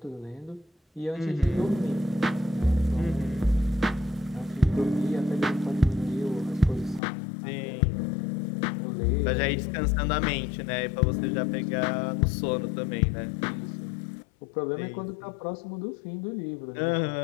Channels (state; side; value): drops out; right; at 7.0 s